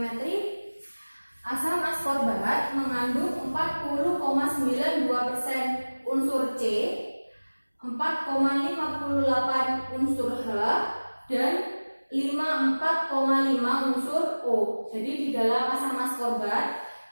Asam askorbat mengandung 40,92% unsur C, 4,58 unsur H, dan 54,5 unsur O. Jadi di dalam asam askorbat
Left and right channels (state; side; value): inverted; both; correlation -1.00